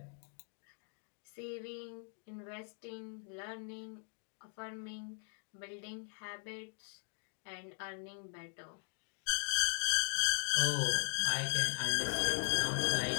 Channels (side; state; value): right; silent; 52 dB below the other